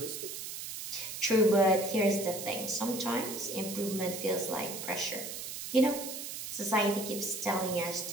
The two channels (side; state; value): right; noise; hiss, 7 dB below the sound